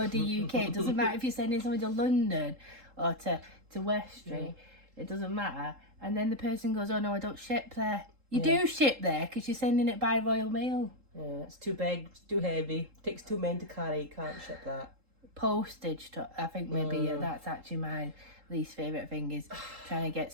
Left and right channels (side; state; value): left; late; 3.8 ms